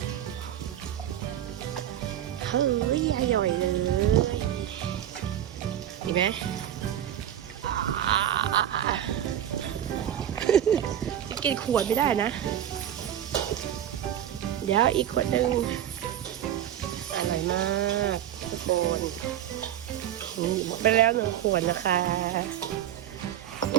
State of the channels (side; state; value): left; quieter; 11.0 dB